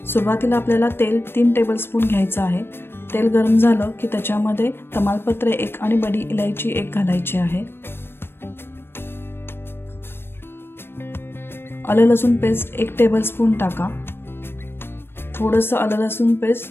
सुरुवातीला आपल्याला तेल 3 टेबलस्पून घ्यायचं आहे। तेल गरम झालं की त्याच्यामध्ये तमालपत्र 1 आणि बडी इलायची 1 घालायची आहे। आलं लसूण पेस्ट 1 टेबलस्पून टाका। थोडंसं आलं लसूण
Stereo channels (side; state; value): right; late; 0.11 ms